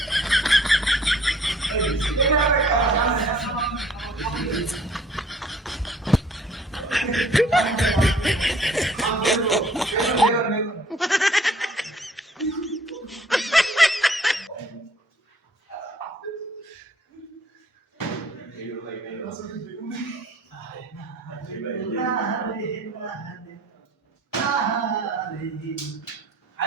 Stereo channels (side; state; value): both; normal; correlation 0.57